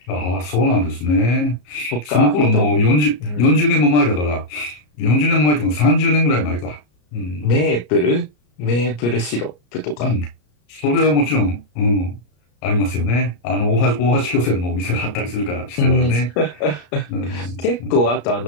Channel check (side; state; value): right; late; 34 ms